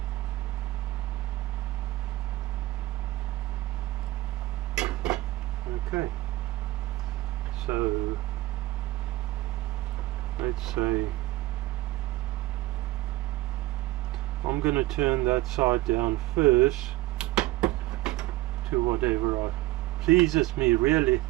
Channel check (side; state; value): left; quieter; 18.0 dB